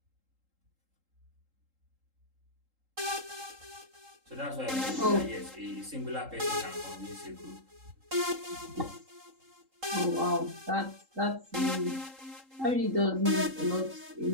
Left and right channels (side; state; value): left; late; 3.8 ms